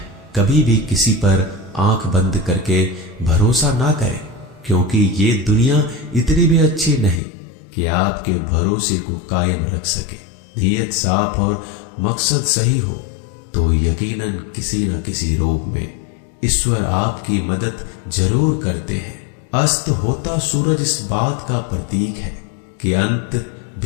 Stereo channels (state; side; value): drops out; right; at 7.2 s